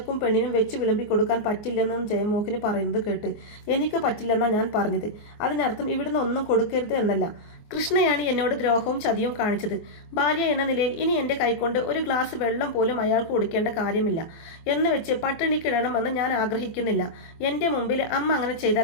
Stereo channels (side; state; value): right; late; 24 ms